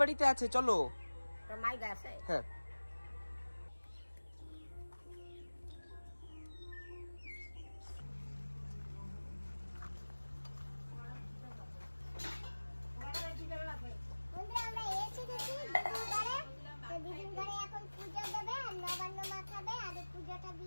আছে, চলো। তোর মাই গেছে? হ্যাঁ। বন্ধুরা আমরা এসে গেছি দিদির ঘরে। তো দিদির ঘরে এখন পূজা দেবে আর নবান্ন মাখাবে, আর এই পূজাটা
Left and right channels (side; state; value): both; inverted; correlation -1.00